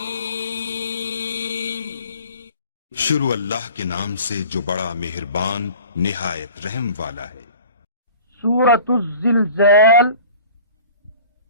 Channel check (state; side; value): inverted; both; correlation -0.44